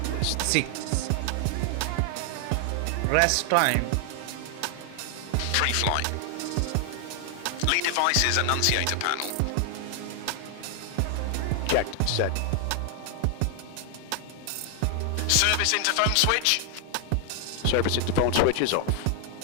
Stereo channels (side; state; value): both; different; correlation 0.00